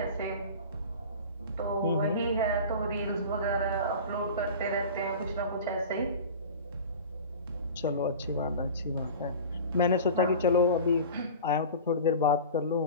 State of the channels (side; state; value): both; inverted; correlation -0.36